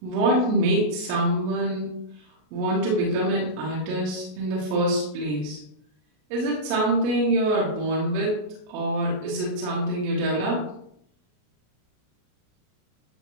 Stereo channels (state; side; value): late; left; 33 ms